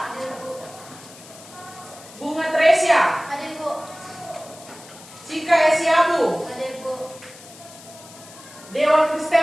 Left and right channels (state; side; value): noise; left; hiss, 19 dB below the sound